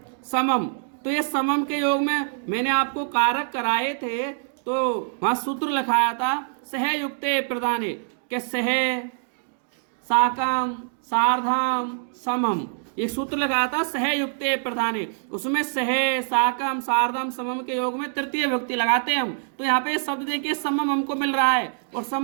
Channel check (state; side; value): silent; left; digital silence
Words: समम, तो ये समम के योग में मैंने आपको कारक कराए थे, तो वहाँ सूत्र लिखाया था सहयुक्ते प्रदाने, के सह साकम सार्धम समम, एक सूत्र लगाया था सहयुक्ते प्रधाने, उसमें सह साकम सार्धम समम के योग में तृतीय विभक्ति लगाते हैं हम। तो यहाँ पे शब्द देखिए समम हमको मिल रहा है और